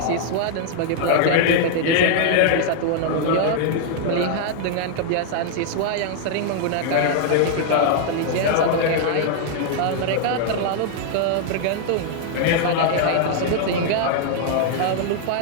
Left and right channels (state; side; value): different; both; correlation 0.00